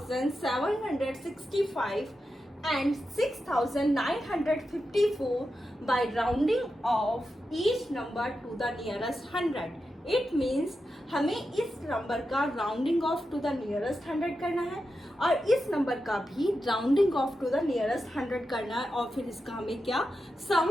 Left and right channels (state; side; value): normal; both; correlation 0.89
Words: and 6,954 by rounding off each number to the nearest 100. It means हमें इस नंबर का rounding off to the nearest 100 करना है और इस नंबर का भी rounding off to the nearest 100 करना है और फिर इसका हमें क्या सम